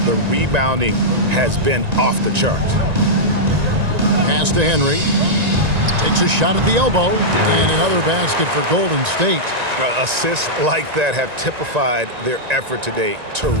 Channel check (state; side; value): late; left; 1.9 ms